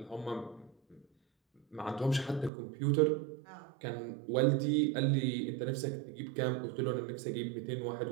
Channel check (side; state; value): left; drops out; at 2.5 s